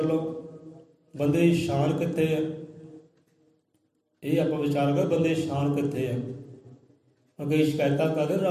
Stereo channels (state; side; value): identical; both; correlation 1.00